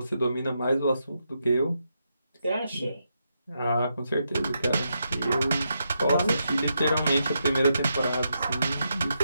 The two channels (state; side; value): inverted; both; correlation -0.83